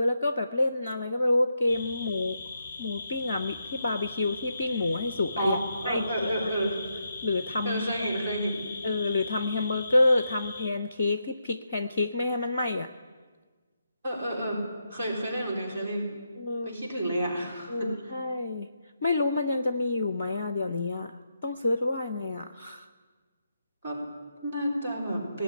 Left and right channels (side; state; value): both; inverted; correlation -0.83